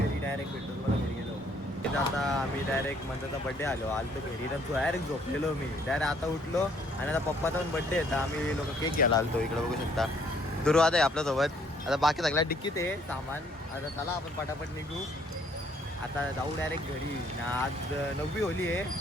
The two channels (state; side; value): normal; both; correlation 0.64